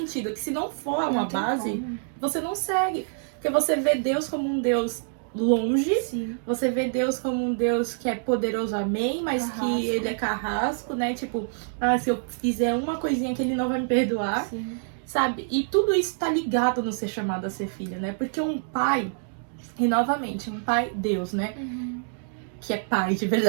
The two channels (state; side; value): silent; left; digital silence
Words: Que se não for uma base, você não segue. Porque você vê Deus como um Deus longe. Sim. Você vê Deus como um Deus que é poderoso, amém, mas Carrasco. que ele é carrasco, né? Tipo, se eu fizer uma coisinha que ele não vai me perdoar, Sim. sabe? E tudo isso tá ligado no ser chamado a ser filho, né? Porque um pai, e novamente, um pai, Deus, né? Que é pai de